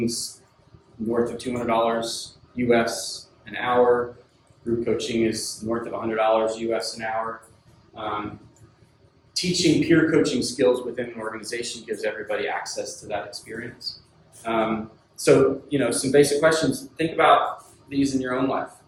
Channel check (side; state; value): both; identical; correlation 1.00